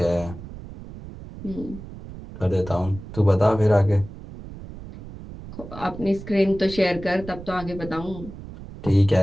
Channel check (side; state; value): right; noise; rumble, 14 dB below the sound